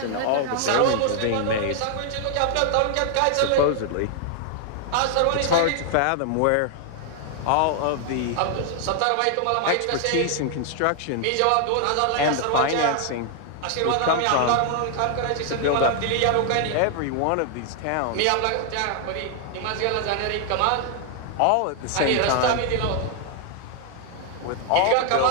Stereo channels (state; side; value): different; both; correlation 0.00